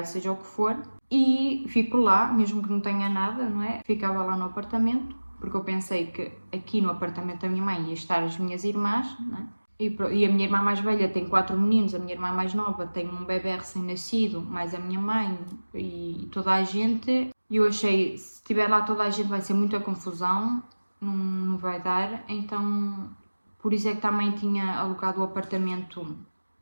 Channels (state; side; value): inverted; both; correlation -1.00